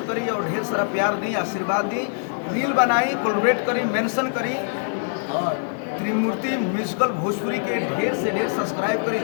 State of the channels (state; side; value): silent; right; digital silence